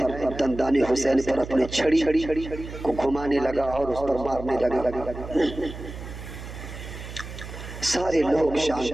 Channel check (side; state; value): right; noise; hum, 11 dB below the sound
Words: دندان حسین پر اپنی چھڑی کو گھمانے لگا اور اس پر مارنے لگا۔ سارے لوگ